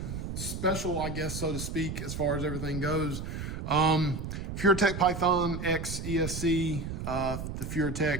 special, I guess, so to speak, as far as everything goes. Furitek Python X ESC, the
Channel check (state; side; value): noise; right; rumble, 6 dB below the sound